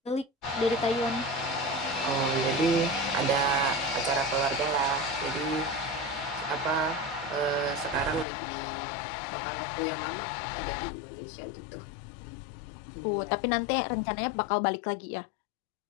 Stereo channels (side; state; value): right; drops out; at 8.2 s